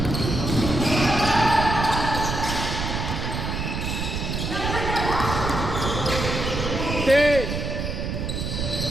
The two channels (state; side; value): noise; right; rumble, 3 dB below the sound